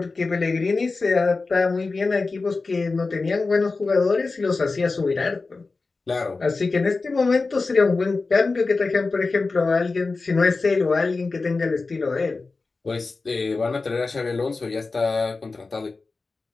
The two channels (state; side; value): quieter; right; 3.9 dB